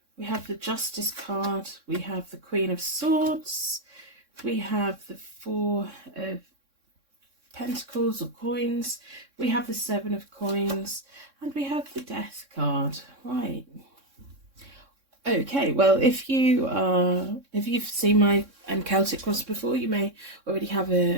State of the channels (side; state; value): left; late; 3.6 ms